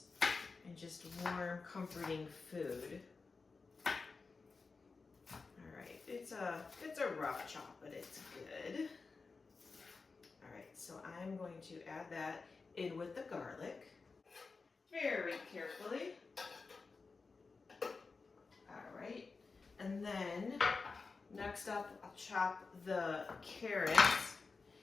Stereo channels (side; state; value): right; quieter; 4.4 dB